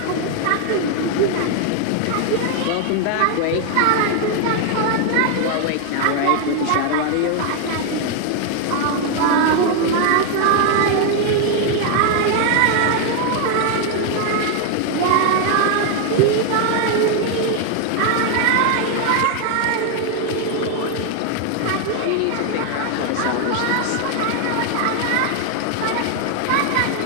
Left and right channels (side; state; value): both; different; correlation 0.00